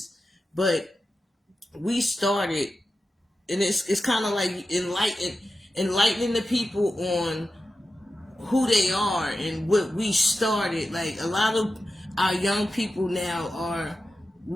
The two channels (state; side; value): normal; both; correlation 0.92